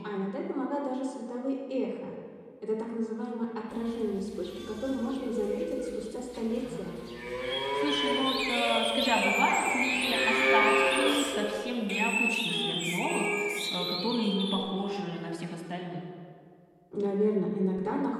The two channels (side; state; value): both; identical; correlation 1.00